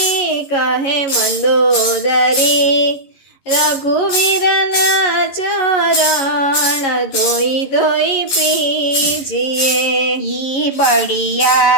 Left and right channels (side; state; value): right; late; 11 ms